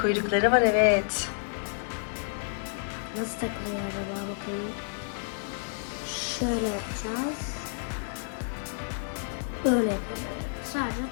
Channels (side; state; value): right; silent; digital silence